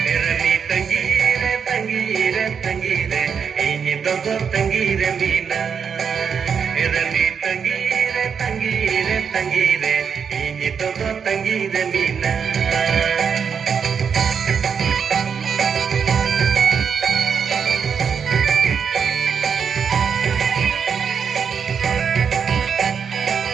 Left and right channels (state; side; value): quieter; left; 6.7 dB